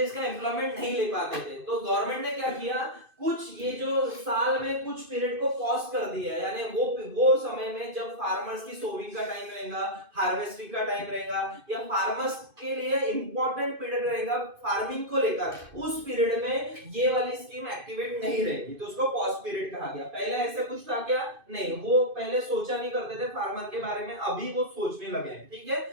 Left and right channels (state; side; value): late; left; 2.5 ms